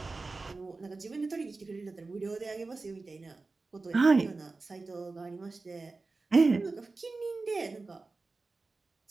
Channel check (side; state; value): left; quieter; 3.7 dB